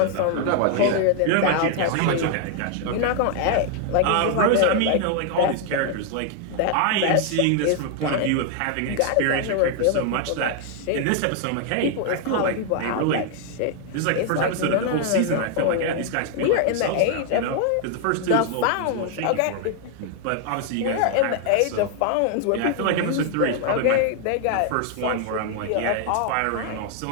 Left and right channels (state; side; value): different; both; correlation 0.00